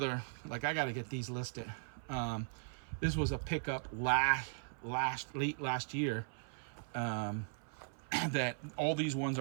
like, I got to get these listed. This was a pickup late last year. That all these ones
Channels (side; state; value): left; silent; 52 dB below the other